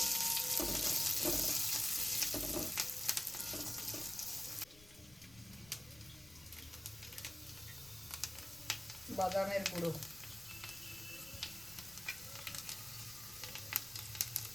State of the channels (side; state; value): left; noise; rumble, 23 dB below the sound